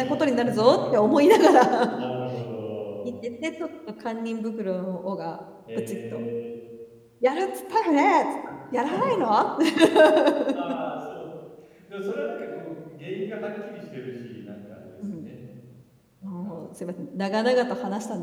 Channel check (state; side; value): identical; both; correlation 1.00